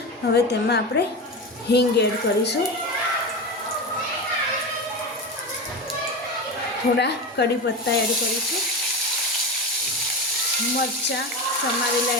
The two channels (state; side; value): normal; both; correlation 0.22